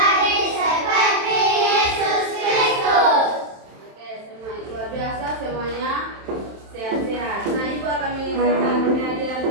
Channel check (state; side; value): late; left; 27 ms